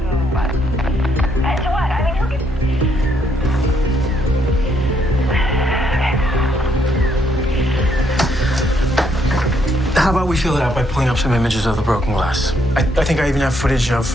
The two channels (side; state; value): both; normal; correlation 0.72